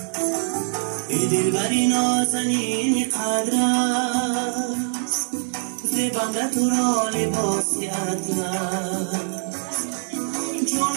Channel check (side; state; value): left; silent; 57 dB below the other